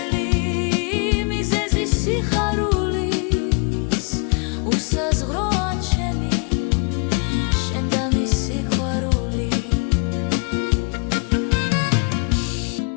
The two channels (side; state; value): right; quieter; 35.4 dB